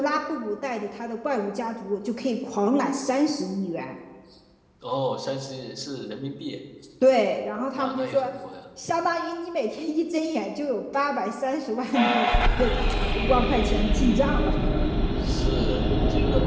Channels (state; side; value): identical; both; correlation 1.00